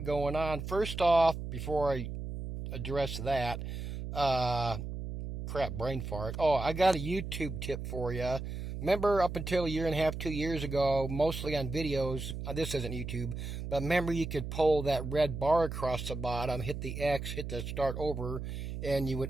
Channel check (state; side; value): noise; right; hum, 6 dB below the sound